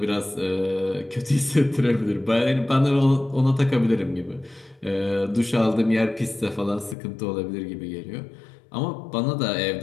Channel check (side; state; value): right; drops out; at 7.0 s